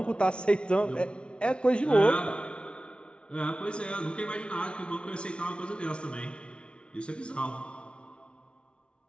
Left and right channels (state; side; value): late; right; 0.058 ms